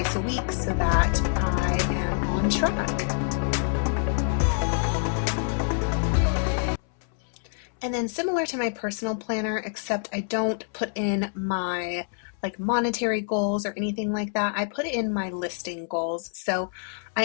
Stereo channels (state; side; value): silent; right; 61 dB below the other